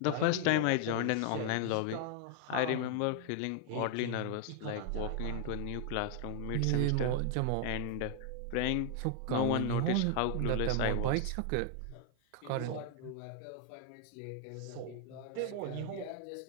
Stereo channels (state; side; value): different; both; correlation 0.00